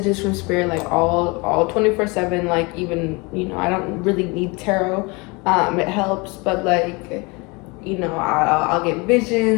from Spirit all 24/7. Even I don't really need tarot. It helps, but I'll get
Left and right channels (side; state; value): right; quieter; 27.6 dB